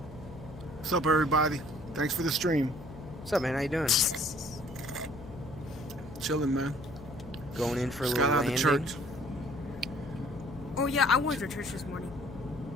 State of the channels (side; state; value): left; noise; hum, 15 dB below the sound